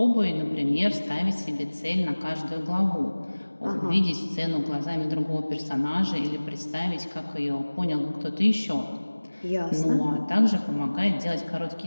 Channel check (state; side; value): inverted; both; correlation -1.00